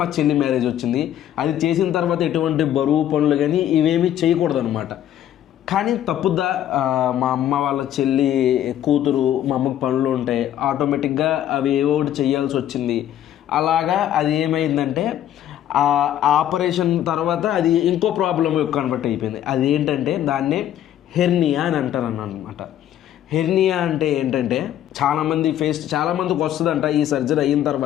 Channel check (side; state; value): right; quieter; 11.4 dB